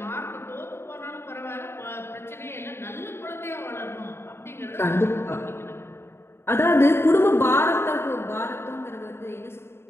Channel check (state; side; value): late; right; 0.12 ms